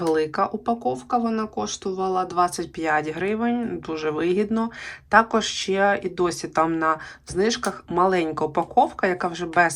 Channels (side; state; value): both; identical; correlation 1.00